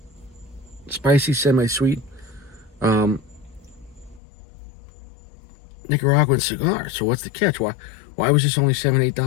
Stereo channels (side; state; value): right; drops out; at 4.2 s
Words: spicy, semi-sweet Nicaraguan cigar. So what's the catch? Why was this only $7,